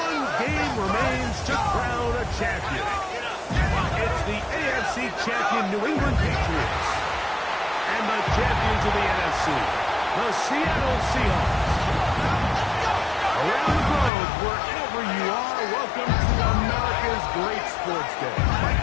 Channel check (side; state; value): right; drops out; at 14.1 s